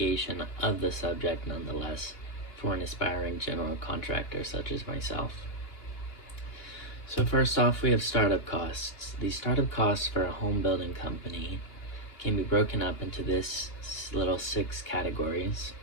of the subject nonetheless for an aspiring general contractor such as myself. So first off, we have startup costs. The startup costs for a home building company can be broken up into this little 6 categories.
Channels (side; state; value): right; late; 2.8 ms